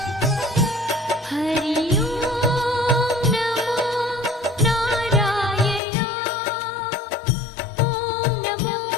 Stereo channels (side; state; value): right; drops out; at 5.8 s